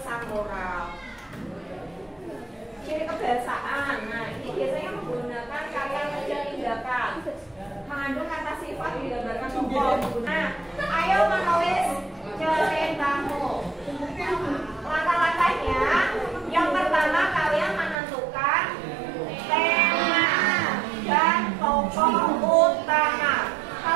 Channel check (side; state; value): left; drops out; at 17.9 s